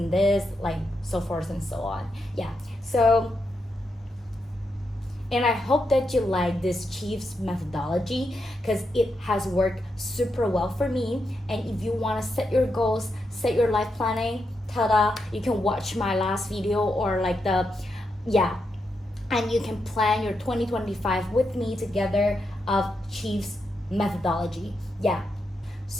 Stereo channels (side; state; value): both; normal; correlation 0.84